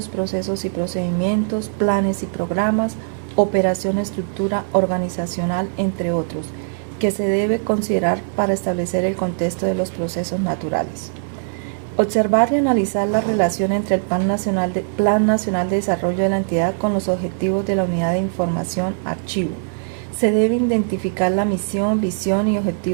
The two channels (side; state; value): left; silent; digital silence